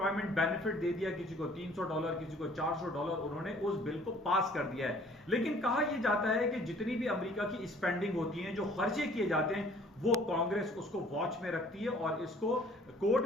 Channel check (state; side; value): normal; both; correlation 0.55